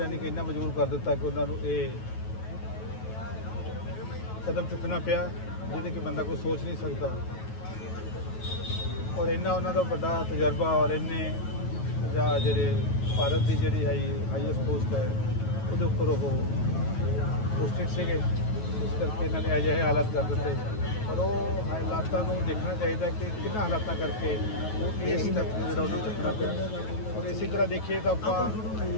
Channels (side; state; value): right; late; 9.3 ms